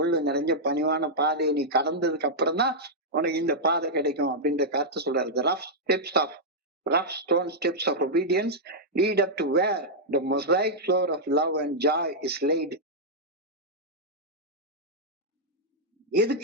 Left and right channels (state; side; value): normal; both; correlation -0.07